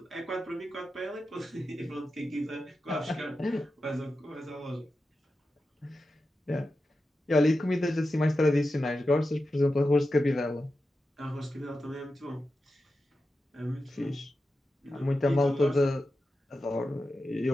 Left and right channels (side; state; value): both; normal; correlation 0.91